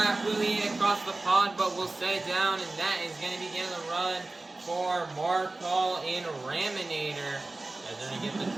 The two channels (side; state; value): left; quieter; 3.1 dB